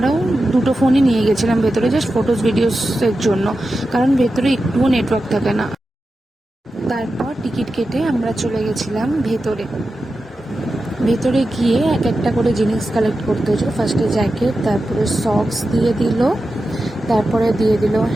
দুটো ফোনই নিয়ে গেছিলাম ভেতরে, জাস্ট ফটোস ভিডিওসের জন্য, কারণ ভেতরে একটুও নেটওয়ার্ক থাকে না। তারপর টিকিট কেটে আমরা চলে গেছিলাম ভেতরে। ভেতরে গিয়ে এক একটা করে জিনিস কালেক্ট করতে হয়েছিল। ফার্স্টে জ্যাকেট, তারপরে সক্স দিয়ে দিল, তারপরে দিয়ে দিল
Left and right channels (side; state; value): both; normal; correlation 0.91